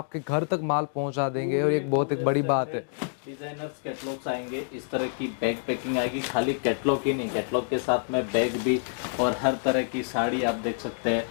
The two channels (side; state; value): right; silent; digital silence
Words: घर तक माल पहुंचा देंगे, और एक बहुत एक बड़ी बात है। डिजाइनर्स कैटलॉग्स आएंगे, इस तरह की बैग पैकिंग आएगी, खाली कैटलॉग ही नहीं, कैटलॉग के साथ में बैग भी, और हर तरह की साड़ी आप देख सकते